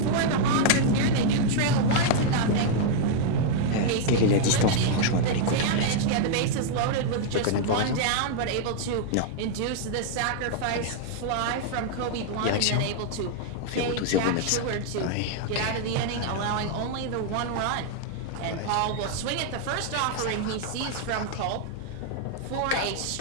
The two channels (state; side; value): different; both; correlation 0.00